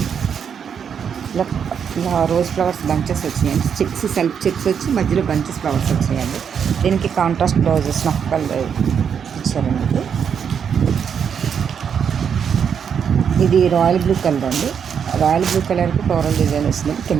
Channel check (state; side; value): quieter; left; 7.4 dB